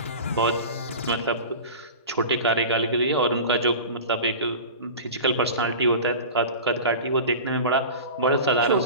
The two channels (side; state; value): both; inverted; correlation -0.33